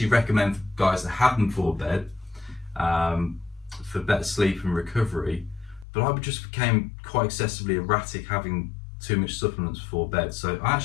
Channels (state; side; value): drops out; right; at 5.9 s